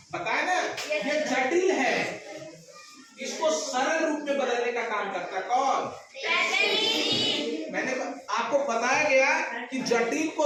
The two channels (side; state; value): both; identical; correlation 1.00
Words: पता है ना, ये जटिल है, इसको सरल रूप में बदलने का काम करता है। कौन? मैंने आपको बताया गया कि जटिल